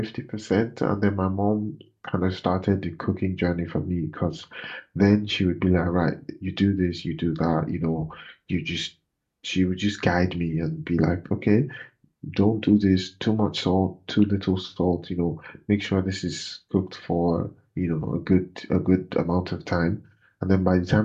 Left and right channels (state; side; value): identical; both; correlation 1.00